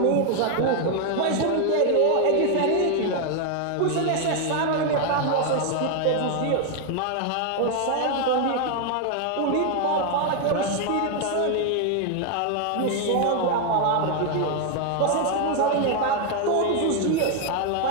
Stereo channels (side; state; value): both; different; correlation 0.01